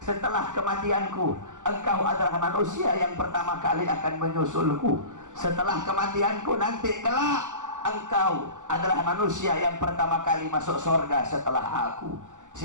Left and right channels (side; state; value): left; late; 0.86 ms